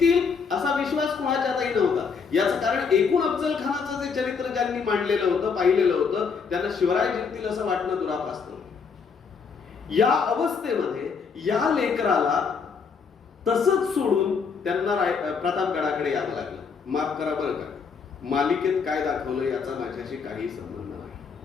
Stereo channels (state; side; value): quieter; right; 5.6 dB